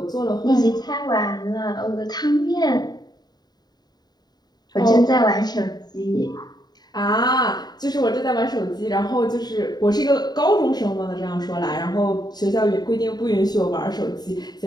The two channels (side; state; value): right; late; 0.20 ms